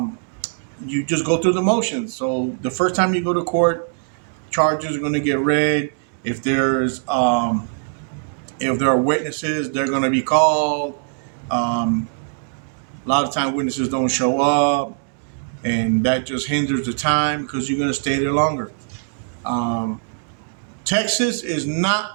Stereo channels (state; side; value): silent; left; digital silence